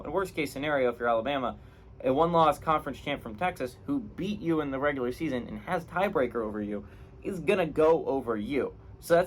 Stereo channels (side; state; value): both; identical; correlation 1.00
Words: worst case scenario, if you're Alabama, a one-loss conference champ from Texas who beat you in the regular season and has tiebreaker over you is going to go over you. So